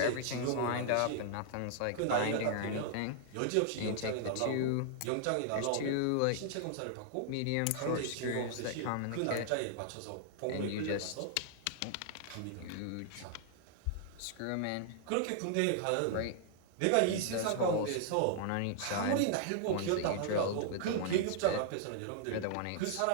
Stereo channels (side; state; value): both; different; correlation -0.01